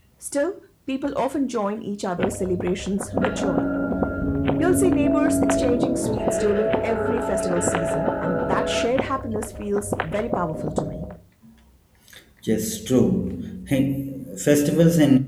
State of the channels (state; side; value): identical; both; correlation 1.00